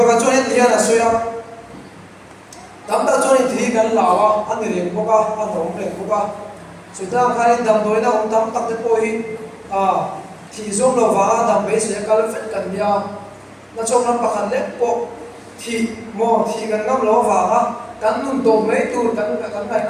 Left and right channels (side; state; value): both; identical; correlation 1.00